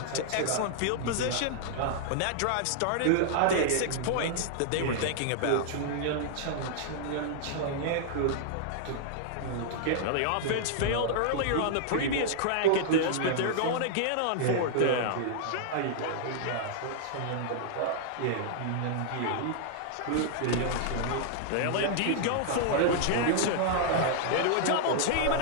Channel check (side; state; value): both; different; correlation -0.01